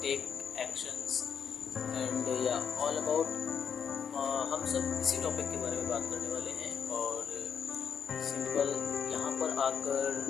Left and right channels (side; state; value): right; quieter; 7.4 dB